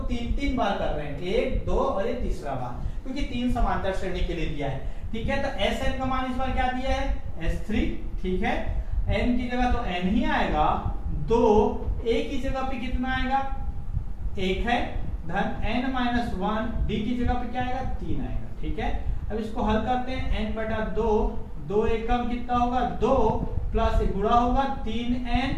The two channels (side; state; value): both; identical; correlation 1.00